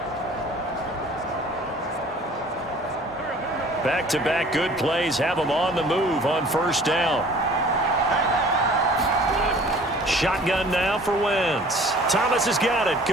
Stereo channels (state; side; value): normal; both; correlation 0.49